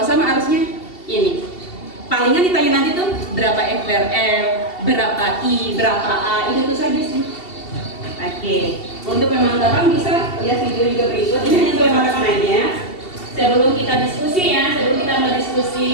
sama arusnya ini. Palingan ditanya nanti tuh berapa F per L, berapa I, berapa A, itu saja sih. Oke, untuk pemantapan bisa lihat video juga berikut. Ini hanya untuk pemantapan aja. Sebelum kita diskusi ya, sebelum kita mulai diskusi,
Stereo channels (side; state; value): right; late; 2.7 ms